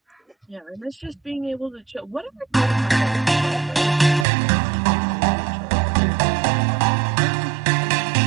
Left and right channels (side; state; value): left; drops out; at 4.2 s